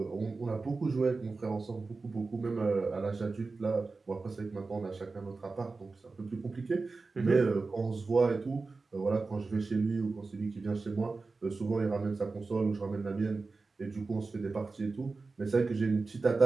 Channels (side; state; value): left; quieter; 3.9 dB